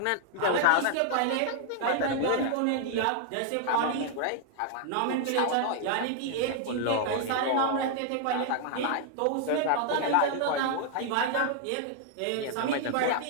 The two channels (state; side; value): different; both; correlation 0.00